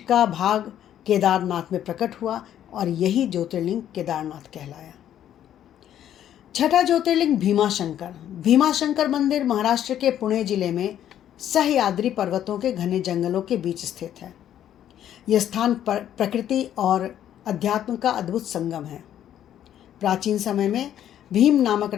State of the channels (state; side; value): quieter; right; 10.8 dB